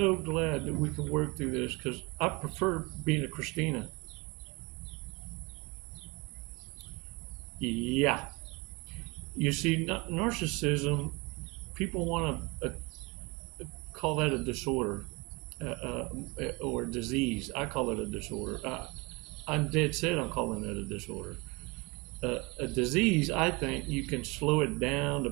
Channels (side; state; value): left; quieter; 26.5 dB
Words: we can work through this, because I prefer being a Christina. Yeah. You see, narcissism, people want to call that a disorder or disease. I call it a disorder. I'm dead set on calling it a disorder. A disease, I think you can slow it down, the